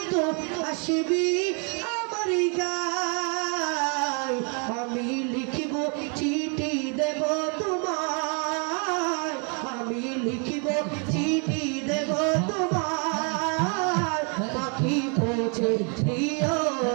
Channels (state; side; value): quieter; left; 37.9 dB